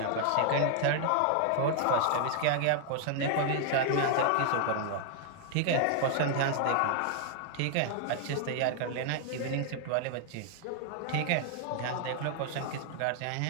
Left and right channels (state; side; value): different; both; correlation 0.00